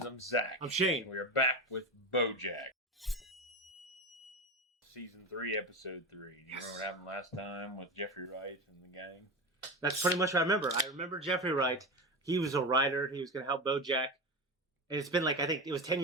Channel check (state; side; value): normal; both; correlation 0.21